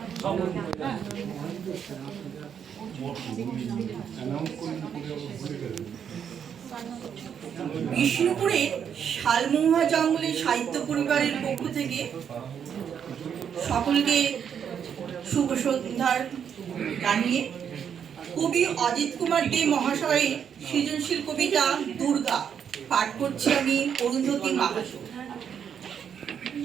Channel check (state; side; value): quieter; left; 8.0 dB